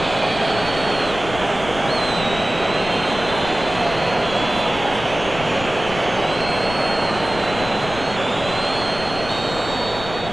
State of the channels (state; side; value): noise; left; rumble, 12 dB below the sound